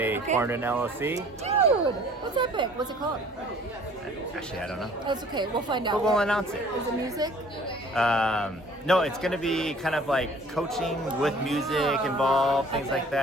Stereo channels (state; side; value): normal; both; correlation 0.53